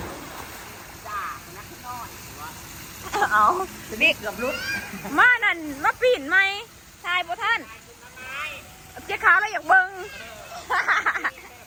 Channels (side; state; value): both; identical; correlation 1.00